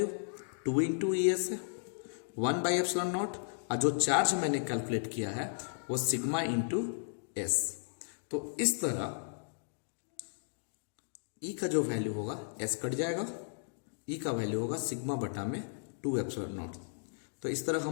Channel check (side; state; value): right; silent; digital silence